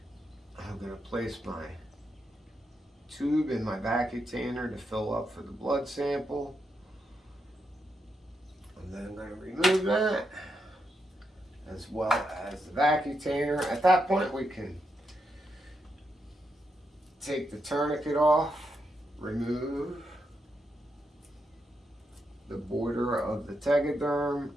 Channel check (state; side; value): normal; both; correlation 0.83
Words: I'm going to place my tube in my vacutainer to fill up for the blood sample. And then I'm going to remove that, as well as the vacutainer. At that point, we can take the tourniquet off, remove the border of the tegaderm.